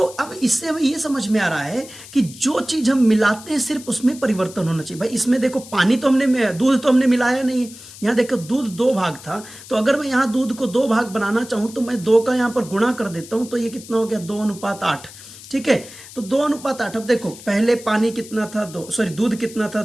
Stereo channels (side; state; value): left; noise; hiss, 17 dB below the sound